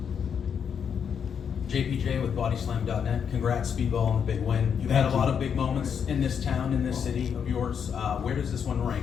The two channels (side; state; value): right; quieter; 7.4 dB